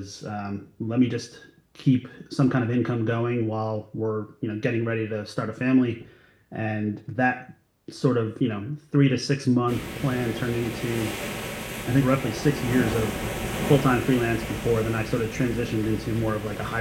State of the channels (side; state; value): both; identical; correlation 1.00